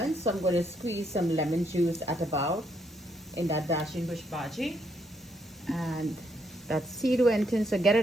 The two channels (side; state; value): both; normal; correlation 0.74